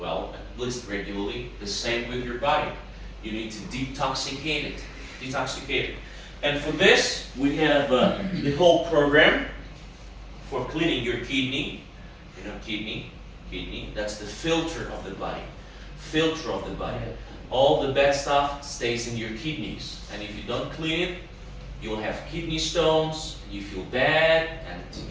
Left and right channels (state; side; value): identical; both; correlation 1.00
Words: at least regularly. The same with your body. You need to detoxicate it. Detoxicate it. And for this, we have the whole program for cleaning your kidney. You know, kidney, that's the filter of the body. Filter of the body. All the bad stuff stays in your kidneys. And if you don't clean it, you'll have kidney stones, and you feel bad, and